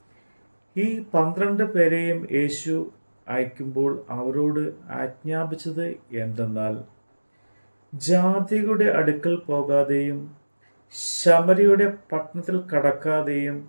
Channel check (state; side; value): inverted; both; correlation -1.00